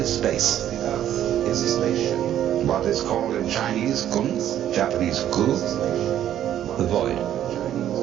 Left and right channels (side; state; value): left; quieter; 11.2 dB